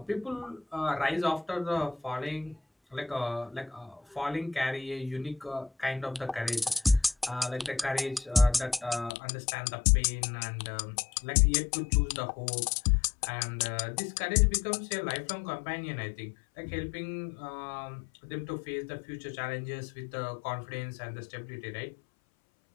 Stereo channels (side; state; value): right; drops out; at 9.1 s